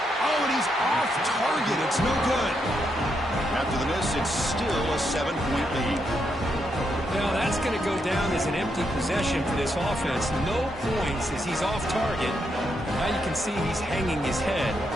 Oh, and he's off target. It's no good. After the miss, it's still a 7-point lead. Now that's going to go down as an empty possession for this offense. No points as he's off target. Now you can see he's hanging his head.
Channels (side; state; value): both; normal; correlation 0.80